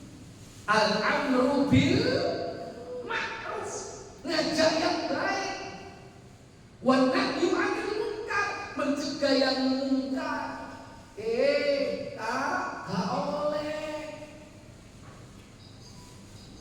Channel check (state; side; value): identical; both; correlation 1.00